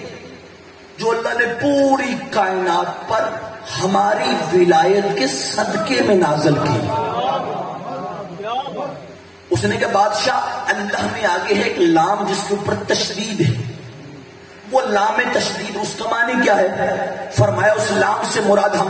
جو اللہ نے پوری کائنات پر ہماری ولایت کے صدقے میں نازل کی۔ اس نے کہا بادشاہ اللہ میں آگے ہے ایک لام جس کے اوپر تشدید ہے، وہ لام تشدید اس کا معنی کیا ہے؟ فرمایا اس لام سے مراد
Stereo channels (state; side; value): identical; both; correlation 1.00